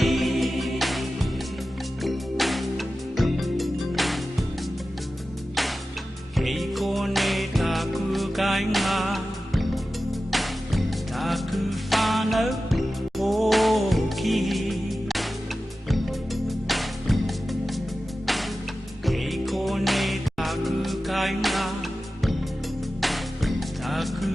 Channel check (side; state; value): both; normal; correlation 0.94